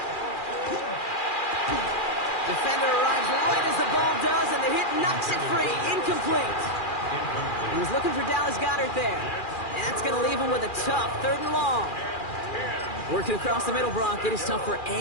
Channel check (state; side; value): late; right; 2.4 ms